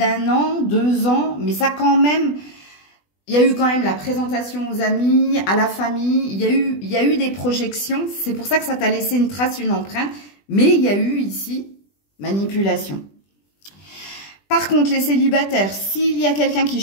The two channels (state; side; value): late; right; 20 ms